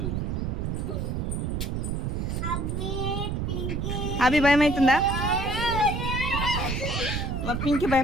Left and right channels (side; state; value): right; noise; rumble, 1 dB below the sound